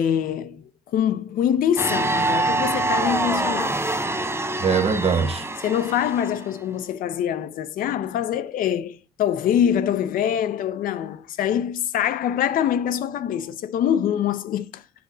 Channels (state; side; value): quieter; right; 4.3 dB